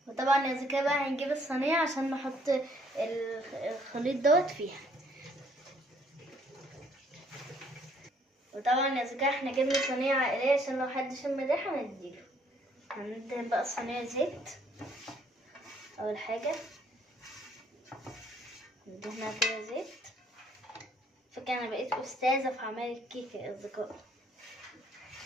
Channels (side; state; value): both; normal; correlation 0.65